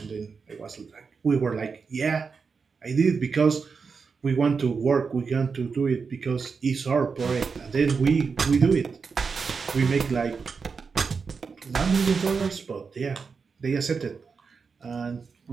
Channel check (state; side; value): quieter; left; 5.3 dB